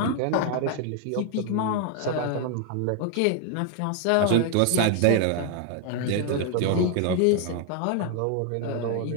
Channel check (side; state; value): both; different; correlation 0.00